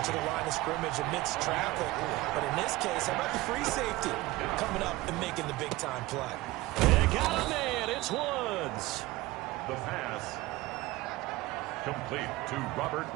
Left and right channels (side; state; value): left; quieter; 19.0 dB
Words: the line of scrimmage amidst traffic. But in this case, how about the free safety coming up and making the big-time play? They got him in. It's Woods. The pass complete to Robert